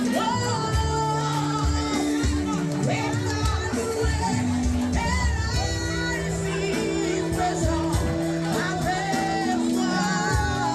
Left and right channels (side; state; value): both; identical; correlation 1.00